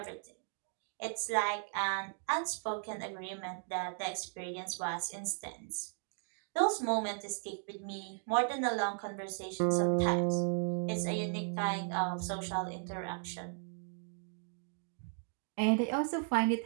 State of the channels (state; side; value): silent; left; 54 dB below the other